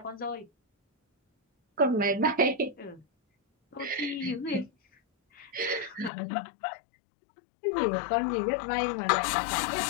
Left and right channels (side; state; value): right; drops out; at 6.1 s